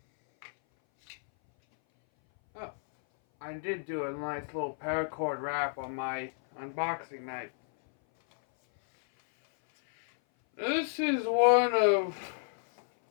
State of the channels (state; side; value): silent; right; 57 dB below the other